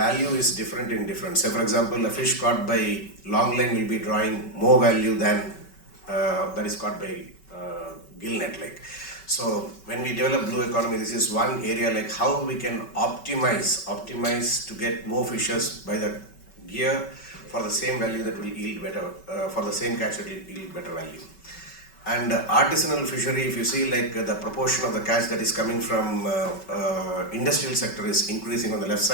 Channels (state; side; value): late; right; 5.3 ms